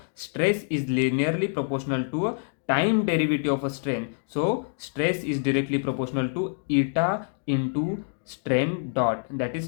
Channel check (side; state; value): right; silent; digital silence